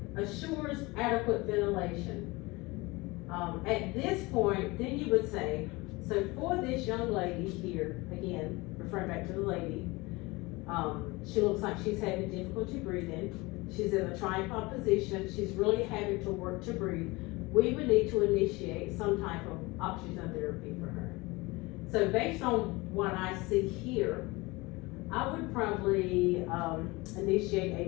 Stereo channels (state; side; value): quieter; right; 23.3 dB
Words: assures adequate ventilation. At this point, then you would say, so for this young lady here, again, referring back to the lady, she looks like she's having difficulty breathing. She's in a tripod position. She's really having to work to breathe. We would need to initiate some type of oxygen therapy for her. So based on what I see here, I would probably initiate